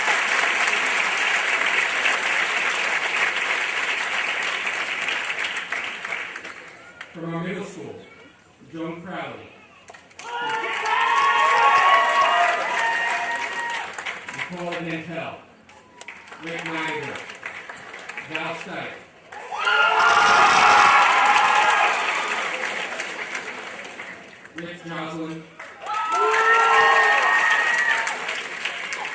From our middle school, Joan Crowley, Nicole Nantel, Rick Niger, Val Stipe, Rich Joslin,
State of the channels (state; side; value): identical; both; correlation 1.00